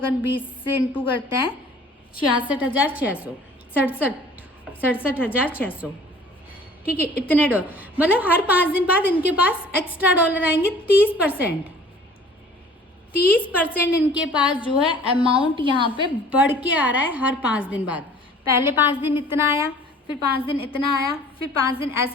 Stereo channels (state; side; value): normal; both; correlation 0.50